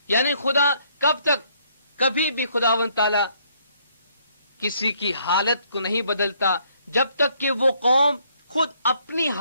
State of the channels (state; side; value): inverted; both; correlation -0.67